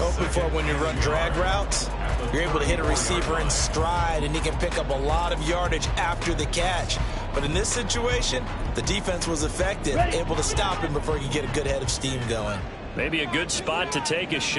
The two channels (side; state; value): both; identical; correlation 1.00